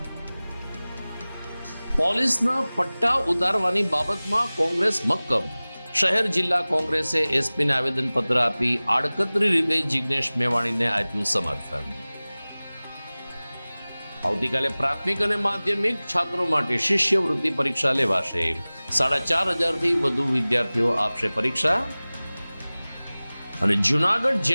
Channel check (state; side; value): inverted; both; correlation -0.99